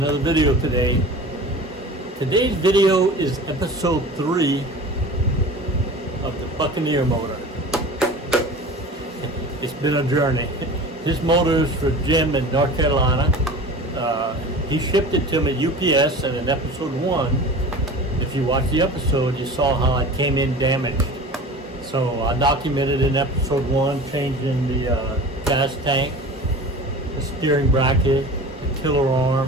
video today. Today's video is episode 3 of the Buccaneer motor. It's been a journey. This motor is for Jim in North Carolina. He shipped it to me at UPS, and in episode 1, if you watched the episode, you saw how it came in damaged. So I documented in episode 1 changing the gas tank, the steering bracket, the tiller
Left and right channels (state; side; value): normal; both; correlation 0.37